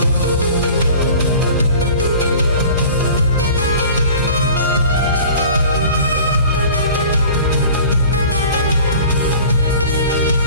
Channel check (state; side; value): inverted; both; correlation -0.44